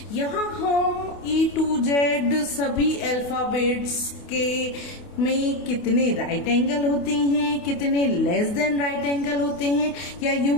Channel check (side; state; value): right; late; 28 ms